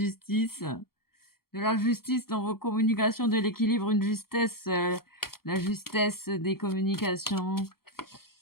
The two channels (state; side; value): late; right; 0.94 ms